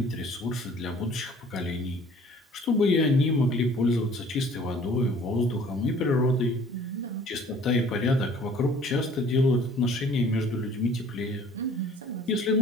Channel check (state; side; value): normal; both; correlation 0.53